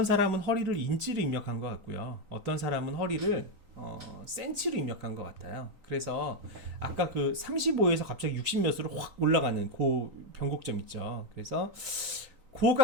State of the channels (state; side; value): late; left; 3.9 ms